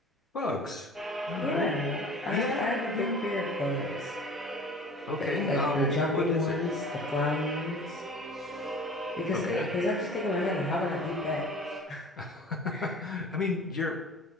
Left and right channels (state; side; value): normal; both; correlation 0.42